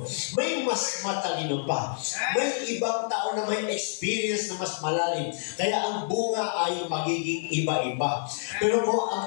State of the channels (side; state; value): right; silent; 59 dB below the other